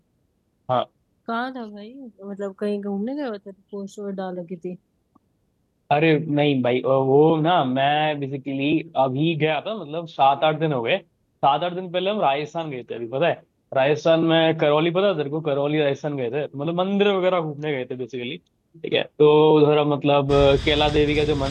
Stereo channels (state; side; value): identical; both; correlation 1.00